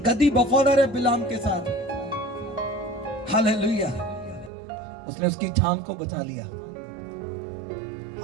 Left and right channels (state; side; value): drops out; left; at 4.5 s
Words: गधी वफादार है बिलाम के साथ। हालेलुया। उसने उसकी जान को बचा लिया।